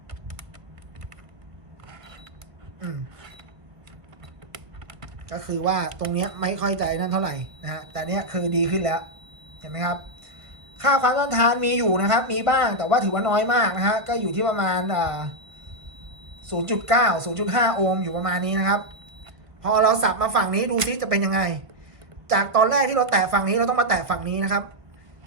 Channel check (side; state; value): left; late; 1.2 ms